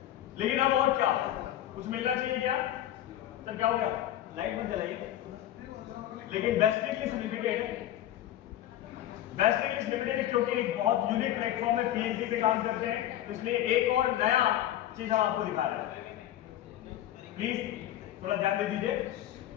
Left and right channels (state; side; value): quieter; right; 12.5 dB